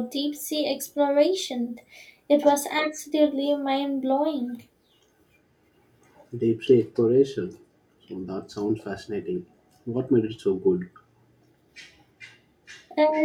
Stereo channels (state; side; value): identical; both; correlation 1.00